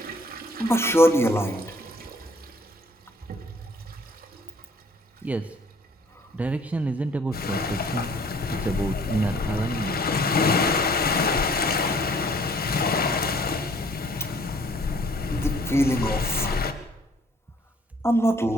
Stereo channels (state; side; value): normal; both; correlation 0.58